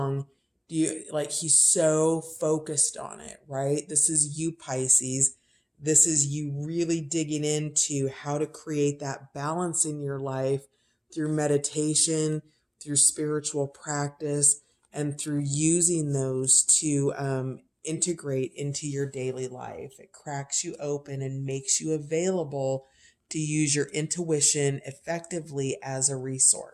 he's so focused on it, right? This is you, Pisces. This is you really digging into how to create that balance in your life through meditation, through spiritual practice, and through using those to integrate into your daily life. It cracks you open and makes you available to use your intuition effectively as a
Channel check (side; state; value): both; identical; correlation 1.00